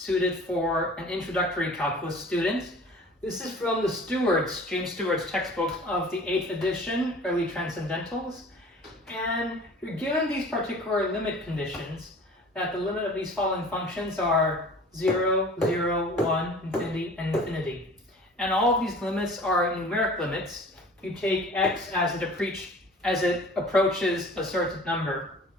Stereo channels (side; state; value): both; normal; correlation 0.45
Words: for an introductory calculus student. This is from the James Stewart's textbooks of the 8th edition, Early Transcendentals. And you're given these particular limit conditions, that the limit of these following functions are 0, 0, 1, infinity, and infinity. And all of these limits are numeric limits. You take x as it approaches a certain number.